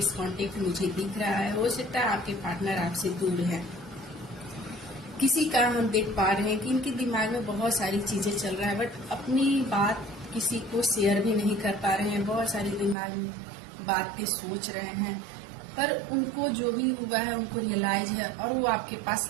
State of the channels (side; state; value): left; drops out; at 13.0 s